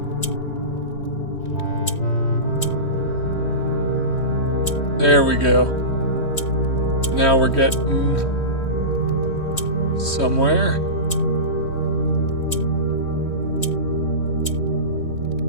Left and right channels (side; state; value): right; late; 3.2 ms